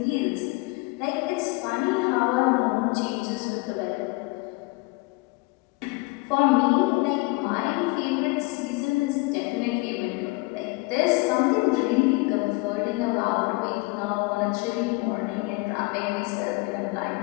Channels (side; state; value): right; quieter; 25.1 dB